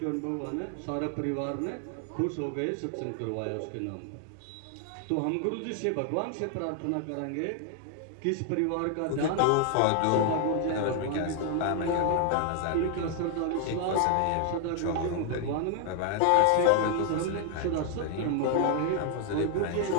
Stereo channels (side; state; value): both; different; correlation 0.00